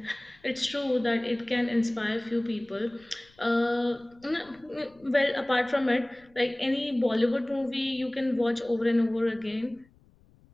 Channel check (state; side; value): noise; left; rumble, 30 dB below the sound